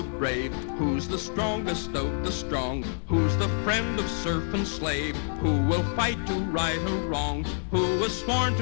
brave? Who's the strongest of the strong? Who's the friend of serf and slave? Who will fight to right a wrong? Who is sworn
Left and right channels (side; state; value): right; silent; digital silence